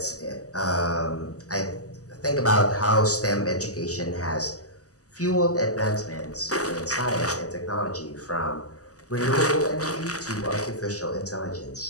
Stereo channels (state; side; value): late; right; 0.66 ms